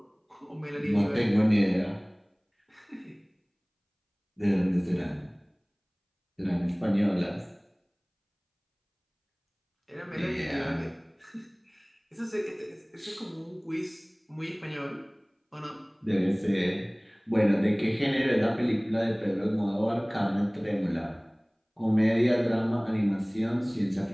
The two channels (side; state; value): both; identical; correlation 1.00